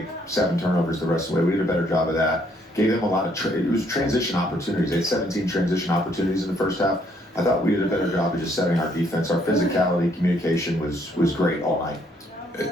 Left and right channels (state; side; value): normal; both; correlation 0.68